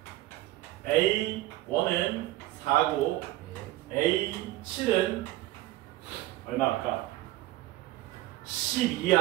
A1은 4고 A7은 얼마일까?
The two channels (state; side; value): quieter; left; 16.7 dB